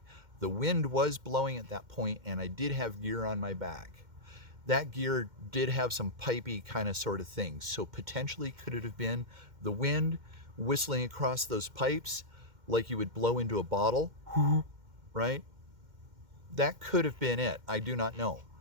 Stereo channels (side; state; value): left; late; 2.1 ms